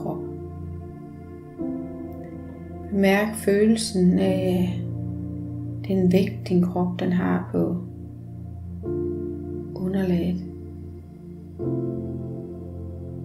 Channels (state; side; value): identical; both; correlation 1.00